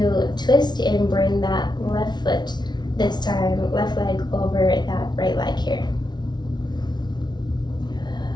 twist and bring that left foot, this time left leg over that right leg here.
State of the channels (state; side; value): late; right; 0.20 ms